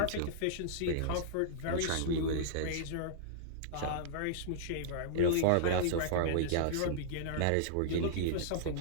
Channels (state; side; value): different; both; correlation -0.02